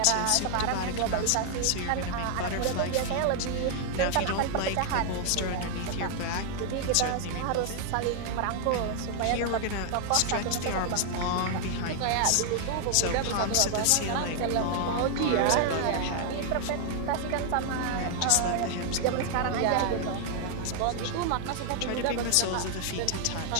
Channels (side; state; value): both; different; correlation 0.00